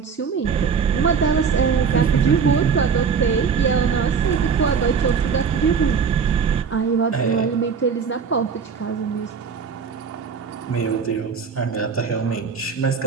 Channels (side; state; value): left; quieter; 6.1 dB